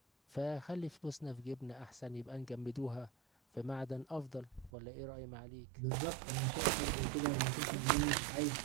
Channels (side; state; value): left; drops out; at 4.7 s